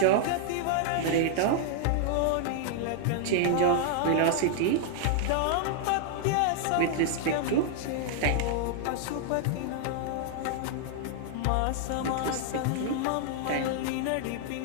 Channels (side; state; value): both; different; correlation -0.01